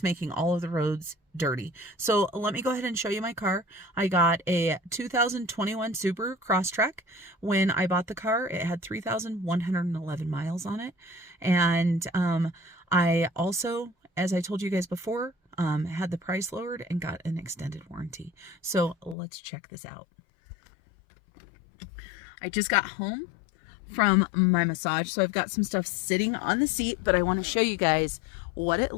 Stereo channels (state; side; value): drops out; right; at 19.2 s